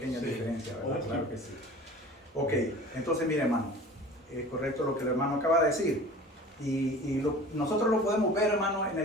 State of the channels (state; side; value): normal; both; correlation 0.41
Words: Sí. diferencia, ¿verdad? Ok. Claro que sí. Ok, entonces mire, hermano, es correcto lo que el hermano acaba de decir. Nosotros lo podemos ver, hermano,